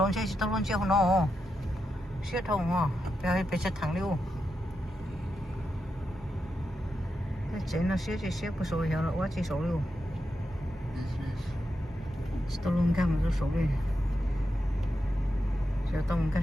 chơi tao luôn chơi nó xía thùng à bây giờ thằng liu cái chuyện nó xía của số hiểu là quá chỉ số liu tao luôn cái mà số đi giờ tao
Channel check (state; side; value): normal; both; correlation 0.86